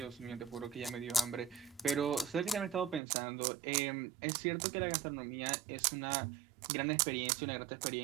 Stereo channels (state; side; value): drops out; left; at 3.0 s